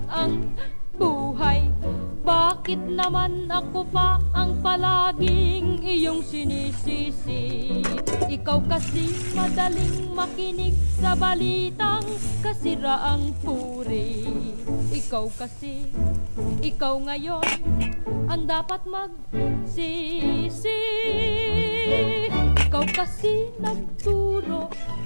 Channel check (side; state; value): both; inverted; correlation -1.00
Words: ang buhay. Bakit naman ako pa ang palaging iyong sinisisi? Ikaw kasi madaling makinig sa balitang kasiraang puri. Ikaw kasi, ikaw ngayon ang dapat magsisi. Ikaw kasi nagturo,